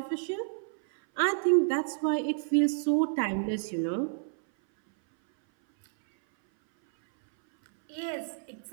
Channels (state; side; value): silent; left; 58 dB below the other